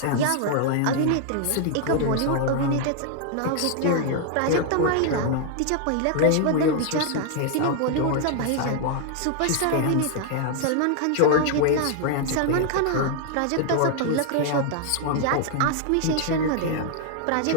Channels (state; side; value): different; both; correlation 0.00